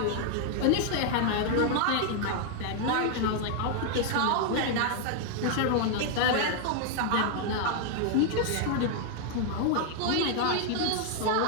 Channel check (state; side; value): different; both; correlation 0.00